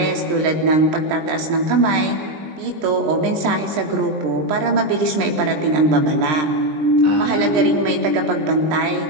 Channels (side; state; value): left; late; 20 ms